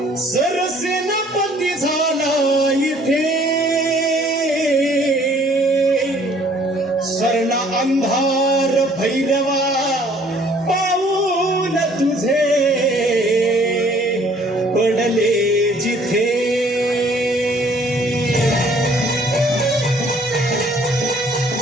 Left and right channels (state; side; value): normal; both; correlation 0.58